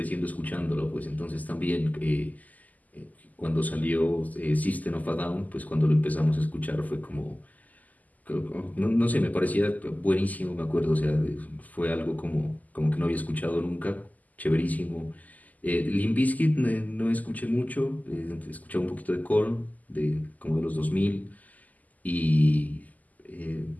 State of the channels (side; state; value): right; late; 0.079 ms